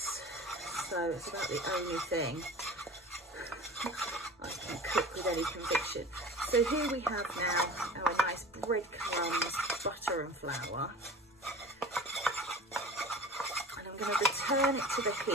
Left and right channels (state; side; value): normal; both; correlation 0.39